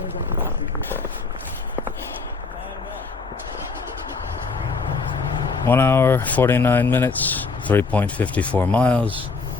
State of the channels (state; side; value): quieter; right; 4.4 dB